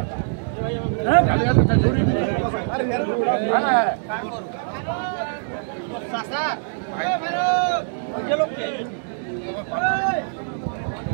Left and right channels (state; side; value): silent; left; digital silence